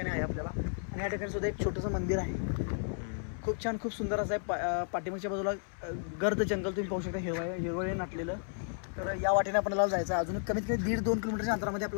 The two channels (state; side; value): silent; right; 56 dB below the other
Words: आहे आपल्याला. आणि या ठिकाणी सुद्धा एक छोटंसं मंदिर आहे. खूप छान, खूप सुंदर असं आहे. पाठीमागच्या बाजूला गर्द जंगल तुम्ही पाहू शकता, हिरवळे नाटलेलं. तर या वाटेने आपल्याला जायचं आहे. अजून कमीत कमी 1.5-2 किलोमीटरच्या अंतरामध्ये